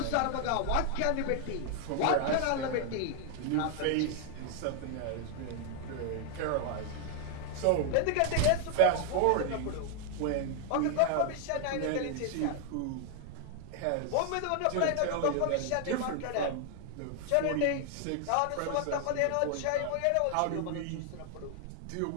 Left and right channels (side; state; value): both; different; correlation 0.00